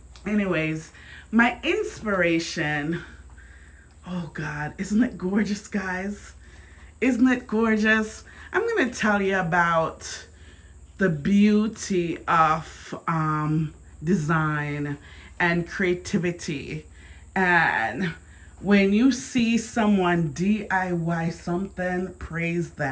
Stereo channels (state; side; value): identical; both; correlation 1.00